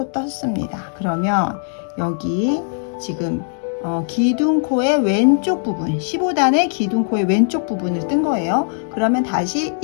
떴습니다. 그러면 여기 지금 기둥코의 왼쪽 부분 15단의 기둥코의 왼쪽 부분을 뜬 거예요. 그러면 다시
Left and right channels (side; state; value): right; silent; 65 dB below the other